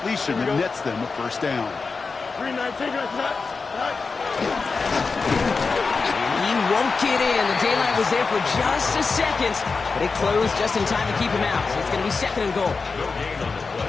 that nets them a first down. 319. And he won't get in. The daylight was there for just a second, but it closed just in time to keep him out. So it's going to be second and goal.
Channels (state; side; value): quieter; right; 4.5 dB